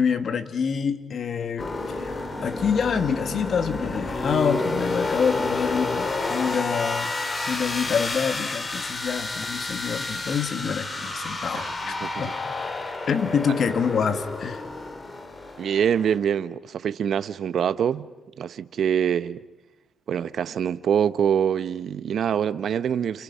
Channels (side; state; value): both; normal; correlation 0.74